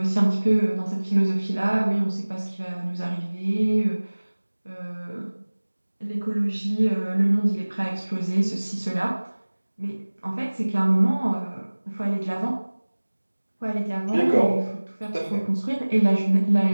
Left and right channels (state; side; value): inverted; both; correlation -1.00